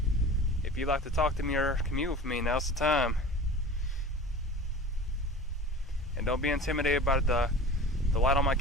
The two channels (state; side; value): normal; both; correlation 0.38